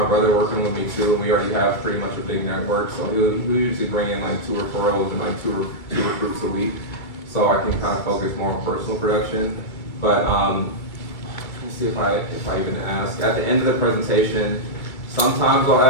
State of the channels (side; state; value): right; late; 2.3 ms